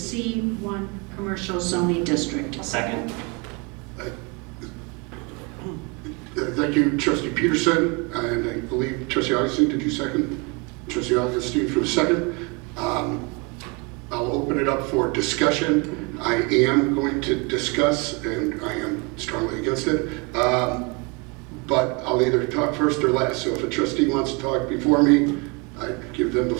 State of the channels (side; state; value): left; quieter; 30.0 dB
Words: commercial zoning district. Second. Thank you, Trustee Peterson, and I believe Trustee Augustine, did you second? Trustee Augustine for the second. I'll open it up for discussion. I am going to discuss, and I am strongly against it, but I'll either talk first or last. So if a trustee wants to talk before me, I give them the